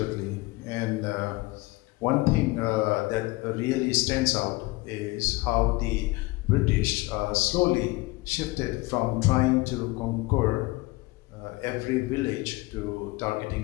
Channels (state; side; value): quieter; right; 21.9 dB